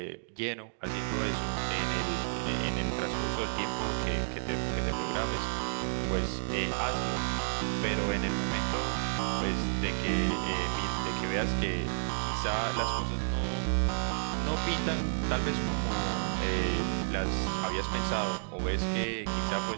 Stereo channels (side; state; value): left; silent; digital silence